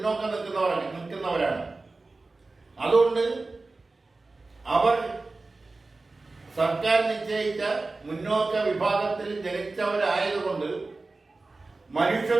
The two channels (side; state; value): left; quieter; 3.5 dB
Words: നിൽക്കുന്നവരാണ്. അതുകൊണ്ട് അവർ സർക്കാർ നിശ്ചയിച്ച മുന്നോക്ക വിഭാഗത്തിൽ ജനിച്ചവരായതുകൊണ്ട്